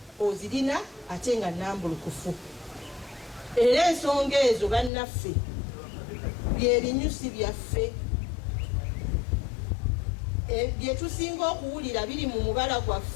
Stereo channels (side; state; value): right; drops out; at 4.9 s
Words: ozirina ate nga nnambulukufu. Era ensonga ezo bannaffe bye binyusi byaffe bye tusinga okuwulira biri mu mubala